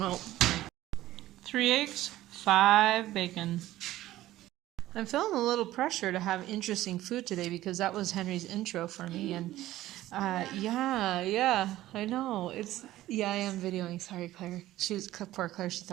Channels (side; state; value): left; quieter; 15.1 dB